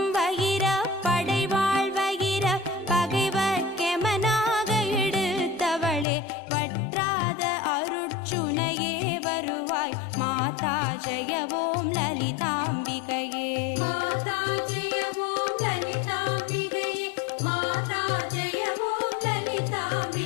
வகிர படைவாள் வகிர பகைவர் கெமனாக எடுத்தவளே, வற்றாத அருட்சுனையே வருவாய் மாதா ஜெயவோம் லலிதாம்பிகையே. மாதா ஜெயவோம் லலிதாம்பிகையே, மாதா ஜெயவோம்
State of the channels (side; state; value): right; drops out; at 6.1 s